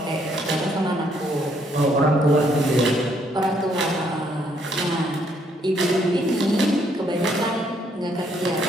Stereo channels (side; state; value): both; normal; correlation 0.70